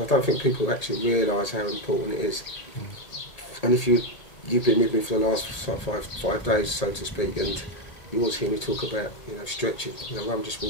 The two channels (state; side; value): late; right; 1.8 ms